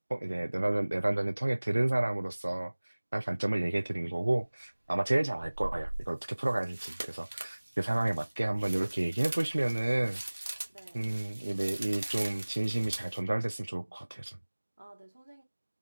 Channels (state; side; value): inverted; both; correlation -1.00